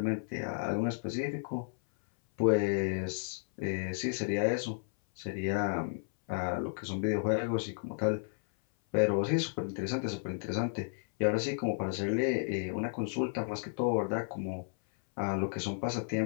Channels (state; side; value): silent; right; 56 dB below the other